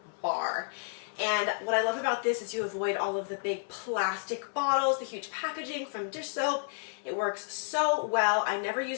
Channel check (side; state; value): right; silent; 57 dB below the other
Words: bar. And what I love about this is you avoid all of the big plastic bottles, the huge packaging from dish soap. It works so well. I never